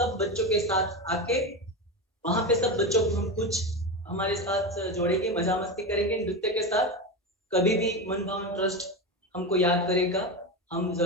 बच्चों के साथ आके वहां पे सब बच्चों को हम कुछ हमारे साथ जोड़ेंगे, मजा मस्ती करेंगे नृत्य के साथ। कभी भी मन भावन ट्रस्ट हमको याद करेगा, हम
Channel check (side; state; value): both; normal; correlation 0.19